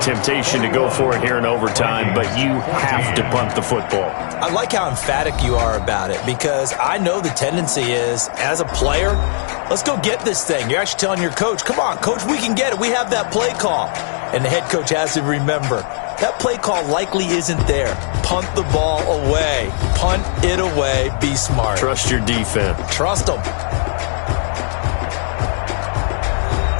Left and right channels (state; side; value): silent; right; digital silence